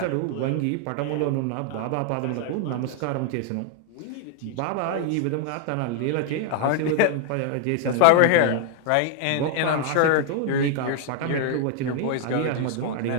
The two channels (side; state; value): both; different; correlation 0.00